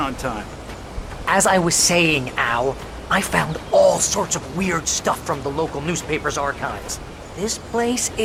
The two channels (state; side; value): identical; both; correlation 1.00